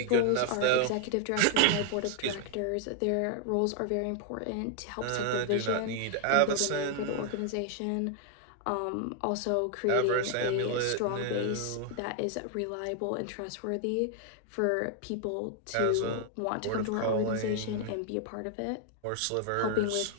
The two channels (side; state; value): both; different; correlation 0.00